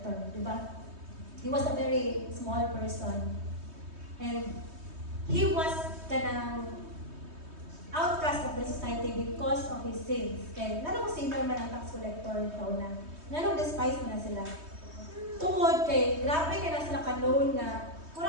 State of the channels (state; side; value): late; left; 3.2 ms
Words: di ba? He was a very small person. And he was kanang outcast of the society because of his sins. Kaya nanong sinner man ang tax collector ikaw na. Nanong despise mo na sila. Tungod kay, grabe kay na sila kanoon nga,